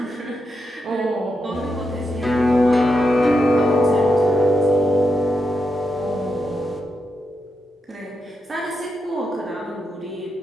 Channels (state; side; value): normal; both; correlation 0.85